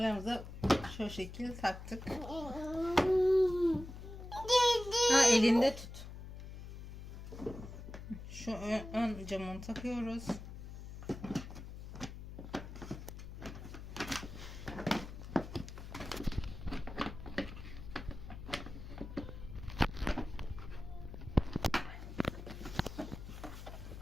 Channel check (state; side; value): noise; left; hum, 10 dB below the sound